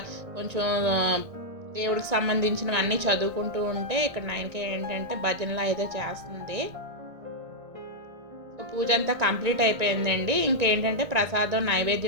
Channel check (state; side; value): late; left; 1.8 ms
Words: కొంచెం దేవుడికి సంబంధించినవన్నీ చదువుకుంటూ ఉంటే ఇక్కడ నైన్క ఏంటంటే భజనలో అయితే చేస్తుంది. పూజ అంతా కంప్లీట్ అయిపోయిందండి. ఇంకేంటంటే ప్రసాదం